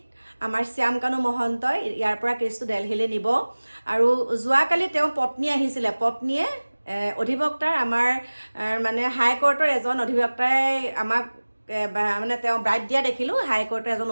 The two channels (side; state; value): both; inverted; correlation -1.00